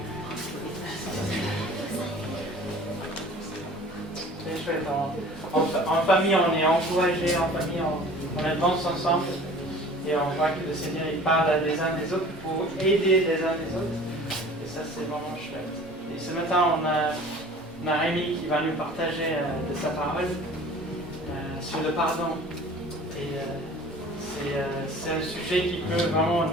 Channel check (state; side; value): normal; both; correlation 0.45